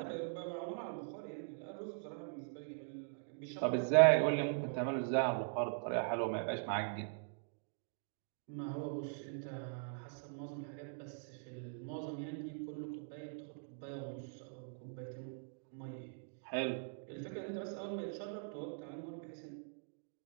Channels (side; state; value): left; silent; digital silence